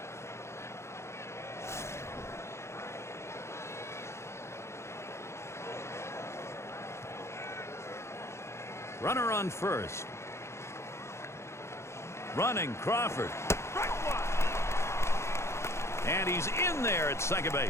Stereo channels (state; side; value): late; right; 0.13 ms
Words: Runner on first. Running Crawford. And he's in there at second